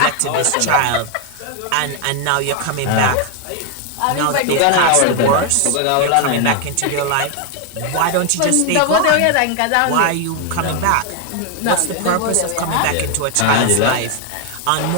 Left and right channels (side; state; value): both; different; correlation 0.01